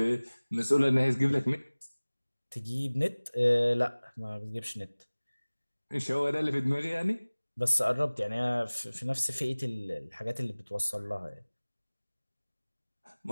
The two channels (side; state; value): both; inverted; correlation -1.00